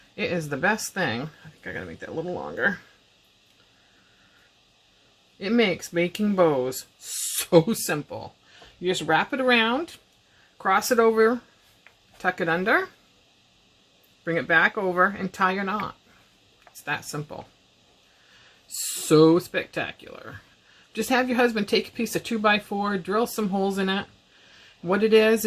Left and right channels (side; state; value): both; identical; correlation 1.00